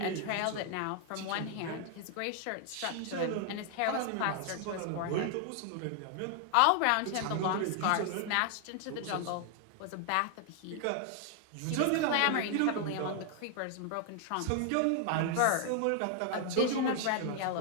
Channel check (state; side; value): different; both; correlation 0.00